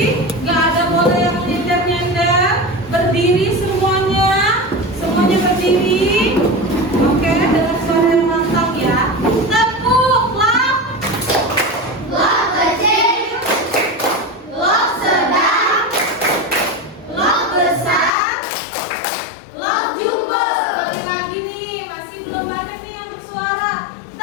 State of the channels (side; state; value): right; drops out; at 18.1 s